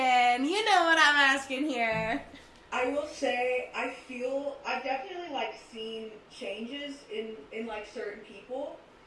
You know what I'm asking here. I will say I've definitely like seen changes in like certain people,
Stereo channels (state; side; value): identical; both; correlation 1.00